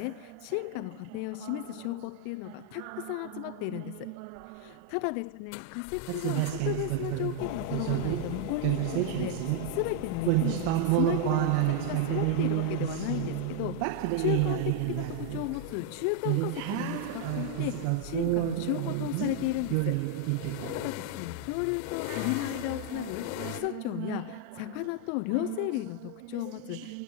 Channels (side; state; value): both; different; correlation 0.00